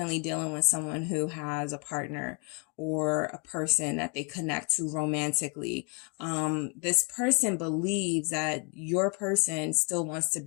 dealing with someone who has a partner or a person that they connect to romantically. This person believes that your person still wants to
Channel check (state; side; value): quieter; right; 33.7 dB